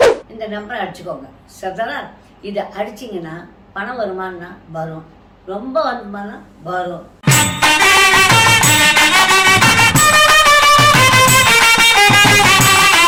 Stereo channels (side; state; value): both; identical; correlation 1.00